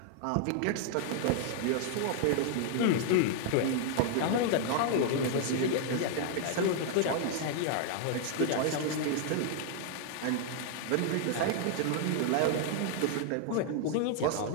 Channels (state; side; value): different; both; correlation 0.00